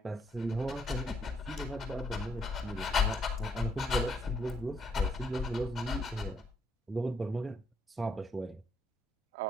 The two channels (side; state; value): both; normal; correlation 0.73